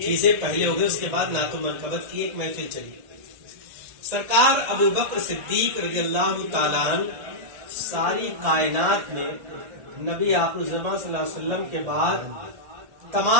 پہلے ہو گئی، اس کے بعد نعت و منقبت کی ایک محفل چلی۔ سرکار ابوبکر صدیق رضی اللہ تعالیٰ عنہ ساری کائنات میں نبی آخر الزمان صلی اللہ علیہ وسلم کے بعد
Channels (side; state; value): left; late; 1.7 ms